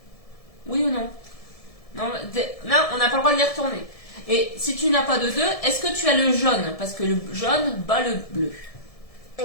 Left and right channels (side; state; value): right; late; 1.7 ms